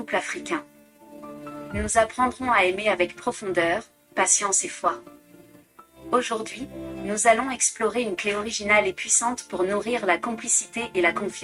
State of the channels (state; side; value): identical; both; correlation 1.00